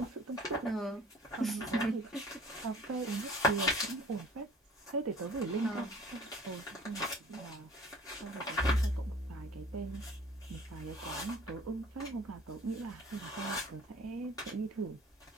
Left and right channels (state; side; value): normal; both; correlation 0.48